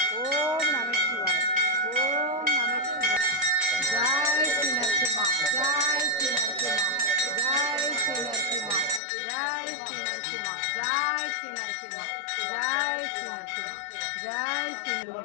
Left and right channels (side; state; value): right; drops out; at 9.0 s